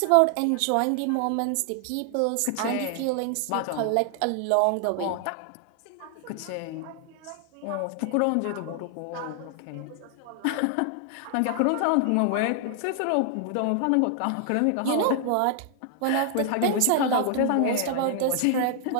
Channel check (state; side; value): different; both; correlation 0.00